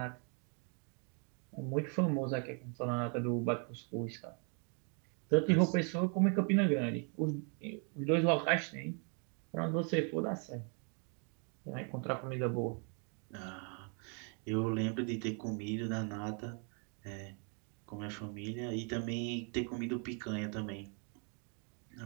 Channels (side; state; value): left; quieter; 38.9 dB